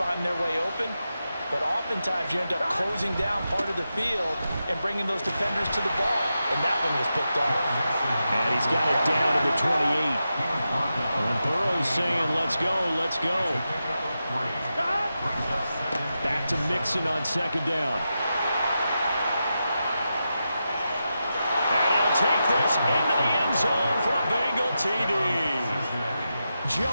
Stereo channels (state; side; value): inverted; both; correlation -0.89